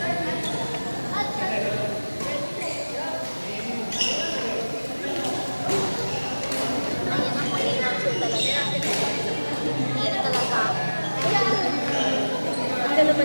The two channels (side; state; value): both; inverted; correlation -1.00